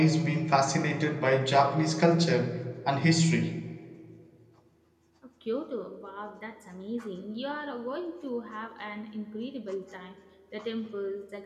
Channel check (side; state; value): both; identical; correlation 1.00